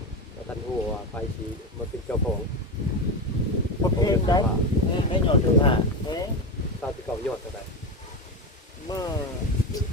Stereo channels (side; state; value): both; normal; correlation 0.17